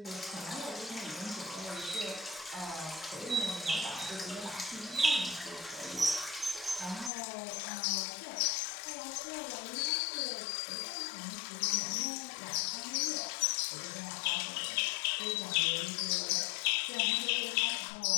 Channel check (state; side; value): drops out; right; at 7.1 s